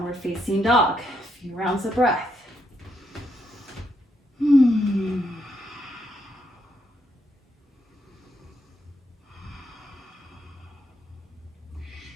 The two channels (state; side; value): normal; both; correlation 0.77